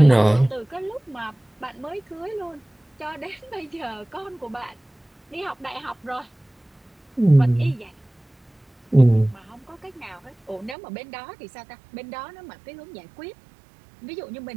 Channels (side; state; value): left; drops out; at 10.8 s